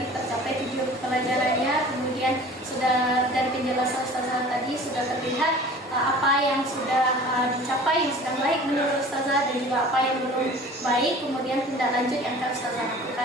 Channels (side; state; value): both; normal; correlation 0.44